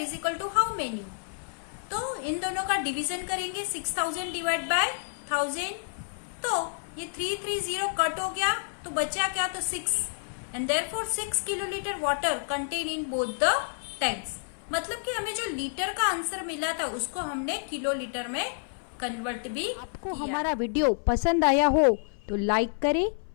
is equal to how many. तो इन दोनों का डिवीजन करेंगे 6,000 डिवाइड बाय 1000। तो ये 330 कट हो गया तो बचा क्या, तो 6 and therefore 6 kilo litre water contain in both the tanks. मतलब कि हमें जो लीटर का आंसर मिला था उसको हमने किलो लीटर में कन्वर्ट भी। आपको हमारा वीडियो पसंद आया हो तो लाइक करें,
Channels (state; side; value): silent; right; 58 dB below the other